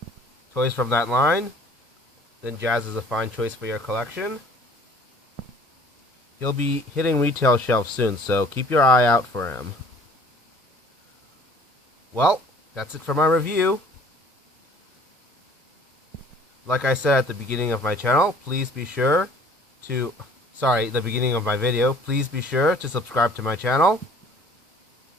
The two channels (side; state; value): both; normal; correlation 0.52